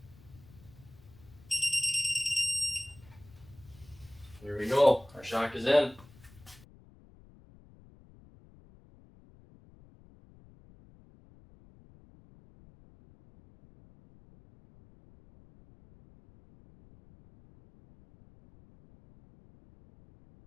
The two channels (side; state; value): left; noise; rumble, 23 dB below the sound